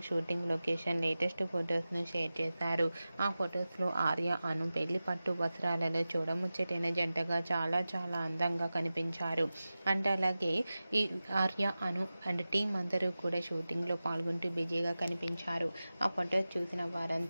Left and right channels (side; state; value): both; inverted; correlation -0.95